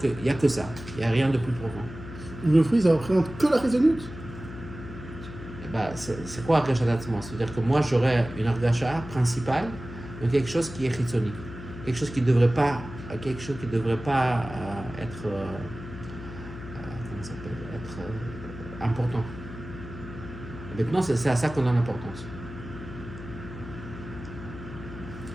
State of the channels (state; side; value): noise; left; hum, 12 dB below the sound